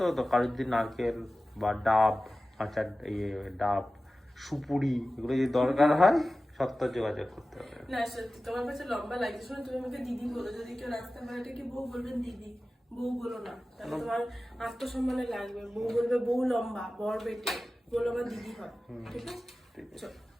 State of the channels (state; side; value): normal; both; correlation 0.96